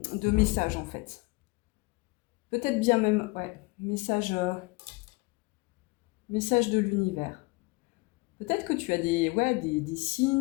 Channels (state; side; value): quieter; right; 26.0 dB